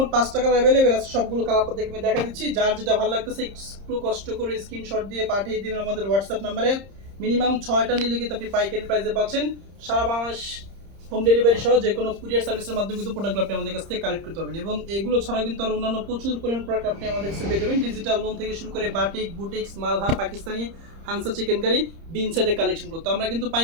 5 টাকা অ্যাভেলেবেল আছে, সবগুলো কালার আপনাদেরকে আমি দেখা দিচ্ছি। যার যেটা ভালো লাগতেছে একটু কষ্ট করে স্ক্রিনশট দিয়ে পাঠিয়ে দিবেন আমাদের হোয়াটসঅ্যাপ নাম্বারে। মিনিমাম 6টা নিলে কিন্তু আপনি পাইকারি প্রাইসে পাচ্ছেন। সারা বাংলাদেশ হোম ডেলিভারি সহ যে কোনো কুরিয়ার সার্ভিসের মাধ্যমে কিন্তু প্রোডাক্টগুলো আপনি আমাদের কাছ থেকে কালেক্ট করতে পারবেন। এবং এগুলো ছাড়াও কিন্তু আরও অন্যান্য প্রচুর পরিমাণ প্রোডাক্ট আপনি আমাদের কাছে পেয়ে যাবেন। ডিজিটাল লোন থেকে শুরু করে batik, boutiques, Malhar, Pakistani, হানসা chicken curry, বিন সাইডের কালেকশন করতে আমরা কিন্তু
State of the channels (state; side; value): late; left; 30 ms